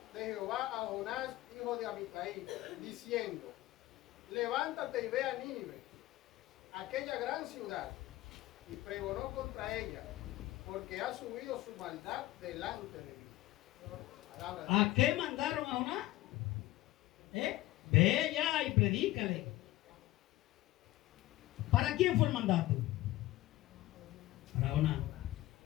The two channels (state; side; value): quieter; right; 16.8 dB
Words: Jehová a Jonás, hijo de Amitai, diciendo: levántate y ve a Nínive, aquella gran ciudad, y pregonó contra ella, porque ha subido su maldad delante de mí. ¿A qué mandaron a Jonás? Ve allá y predícale. ¿Para quién fue el mandato? Para Jonás.